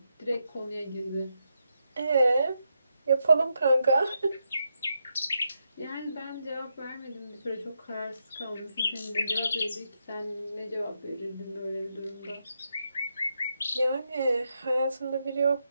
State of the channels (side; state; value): both; inverted; correlation -0.83